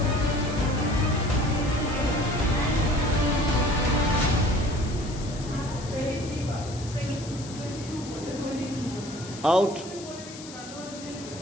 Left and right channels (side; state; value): left; noise; hiss, 15 dB below the sound